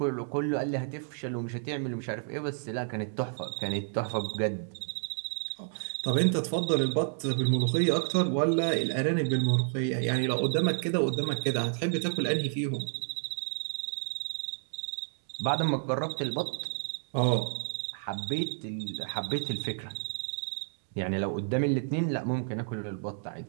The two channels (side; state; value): left; silent; digital silence